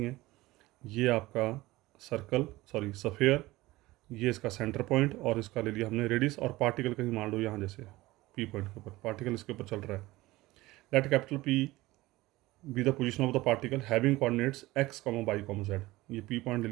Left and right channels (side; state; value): left; quieter; 18.9 dB